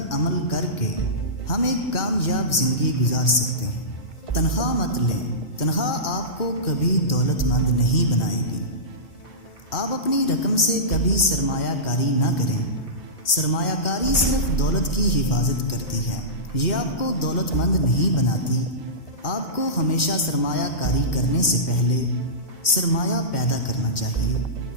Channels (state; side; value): late; right; 2.1 ms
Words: عمل کر کے ہم ایک کامیاب زندگی گزار سکتے ہیں۔ تنخواہ مت لیں، تنخواہ آپ کو کبھی دولت مند نہیں بنائے گی۔ آپ اپنی رقم سے کبھی سرمایہ کاری نہ کریں۔ سرمایہ کاری صرف دولت کی حفاظت کرتی ہے، یہ آپ کو دولت مند نہیں بناتی۔ آپ کو ہمیشہ سرمایہ کاری کرنے سے پہلے سرمایہ پیدا کرنا چاہیے۔